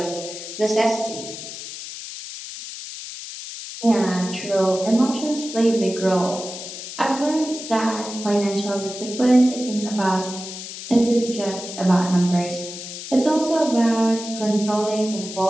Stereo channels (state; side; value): noise; left; hiss, 10 dB below the sound